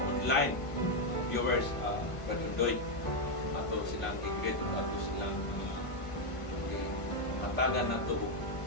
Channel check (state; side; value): late; right; 1.5 ms